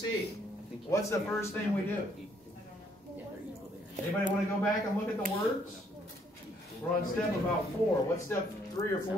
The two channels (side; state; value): both; normal; correlation 0.67